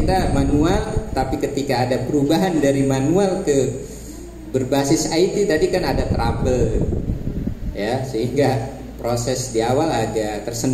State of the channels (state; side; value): identical; both; correlation 1.00